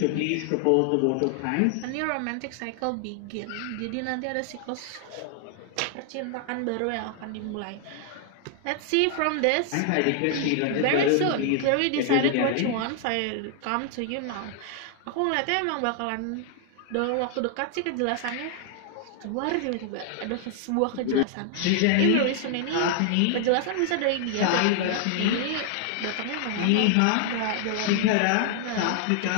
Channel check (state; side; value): different; both; correlation 0.00